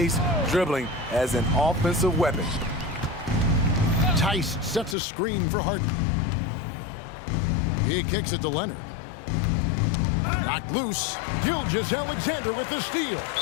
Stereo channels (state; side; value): drops out; right; at 5.0 s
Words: dribbling as an offensive weapon. Tice sets a screen for Harden. He kicks it to Leonard. Knocked loose. Gilgeous-Alexander with the steal.